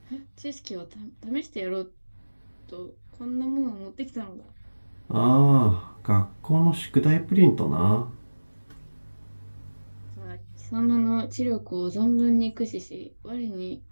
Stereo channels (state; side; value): inverted; both; correlation -1.00